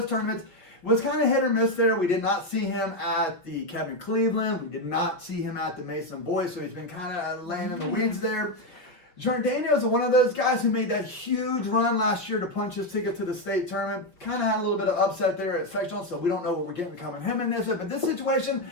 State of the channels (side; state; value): right; late; 5.8 ms